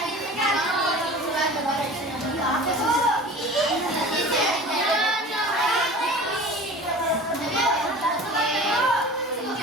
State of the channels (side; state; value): both; normal; correlation 0.39